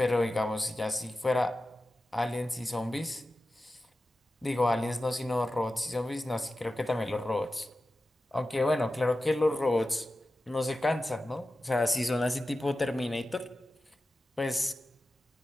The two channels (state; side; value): normal; both; correlation 0.94